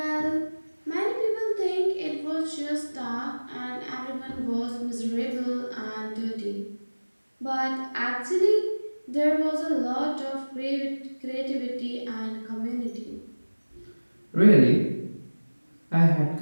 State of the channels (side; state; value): both; inverted; correlation -1.00